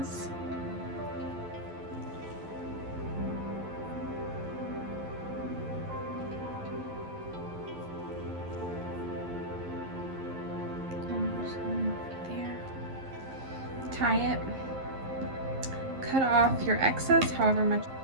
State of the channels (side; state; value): left; late; 11 ms